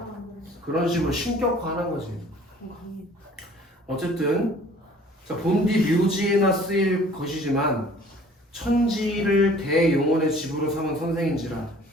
그런 식으로 신격화하는 거지. 어쨌든 자, 본디 묘지에나 쓰일 것이지만 천지를 대용언의 집으로 삼은 선생인지라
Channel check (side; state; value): both; normal; correlation 0.52